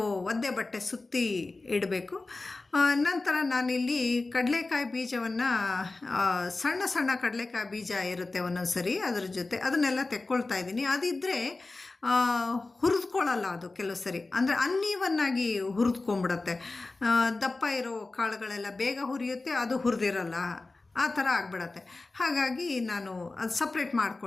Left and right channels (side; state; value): right; quieter; 3.4 dB